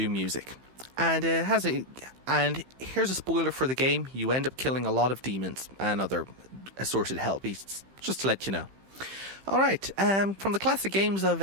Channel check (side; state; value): left; late; 15 ms